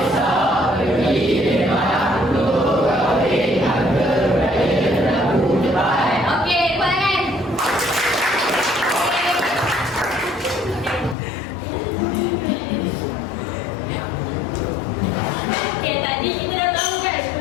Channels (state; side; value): drops out; right; at 11.2 s